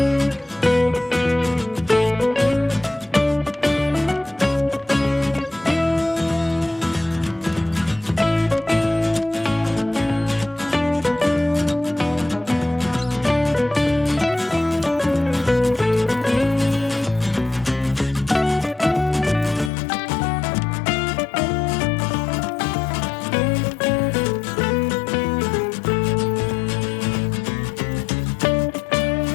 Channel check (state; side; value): drops out; right; at 19.7 s